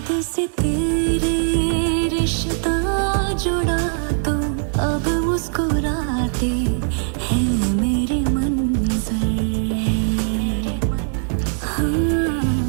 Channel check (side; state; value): left; silent; 57 dB below the other